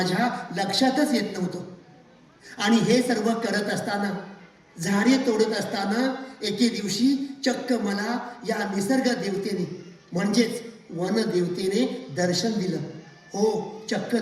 लक्षातच येत नव्हतं आणि हे सर्व करत असताना झाडे तोडत असताना एके दिवशी चक्क मला या निसर्ग देवतेने म्हणजेच वन देवतेने दर्शन दिलं हो चक्क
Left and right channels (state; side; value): identical; both; correlation 1.00